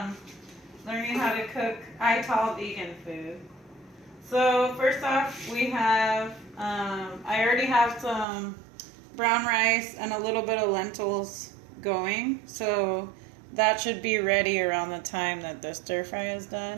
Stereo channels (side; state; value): left; drops out; at 8.2 s